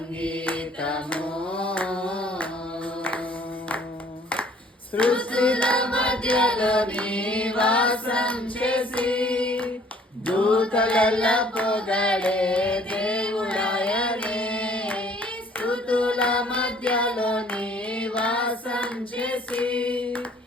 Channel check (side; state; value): both; normal; correlation 0.58